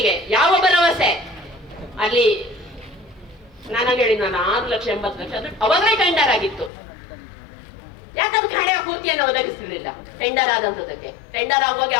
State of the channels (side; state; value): right; drops out; at 6.7 s